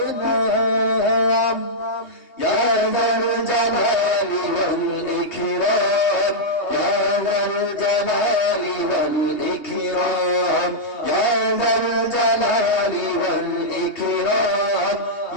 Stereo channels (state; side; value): late; right; 2.8 ms